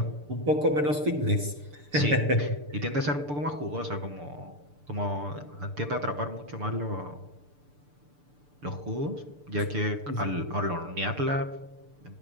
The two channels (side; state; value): left; late; 6.8 ms